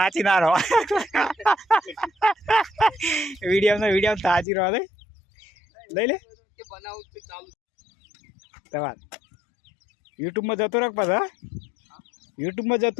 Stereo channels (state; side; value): drops out; right; at 4.5 s